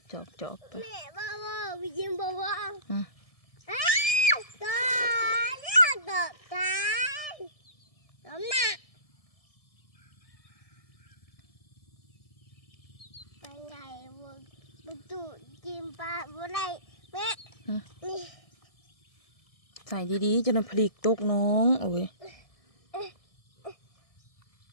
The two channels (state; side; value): late; right; 1.7 ms